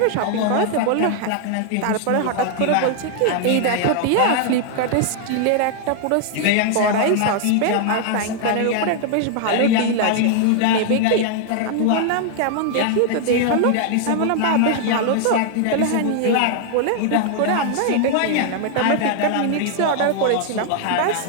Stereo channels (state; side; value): different; both; correlation 0.00